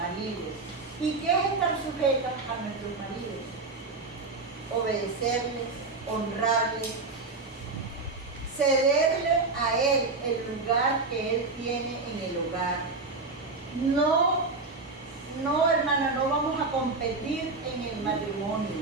¿Y qué es estar sujetas a nuestros maridos? Obedecerles, honrarles, cederle a él el lugar que él tiene en el hogar. No, hermana, no vamos a competir en el matrimonio.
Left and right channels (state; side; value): quieter; left; 3.7 dB